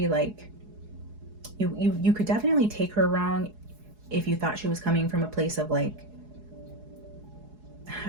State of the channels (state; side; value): late; left; 4.7 ms